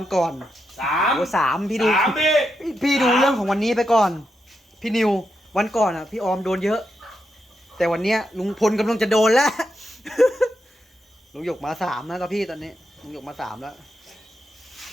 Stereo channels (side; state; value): both; normal; correlation 0.84